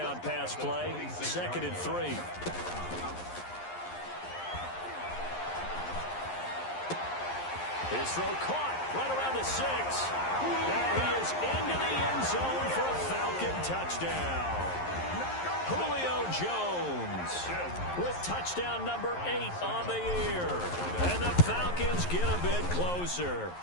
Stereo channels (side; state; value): right; late; 11 ms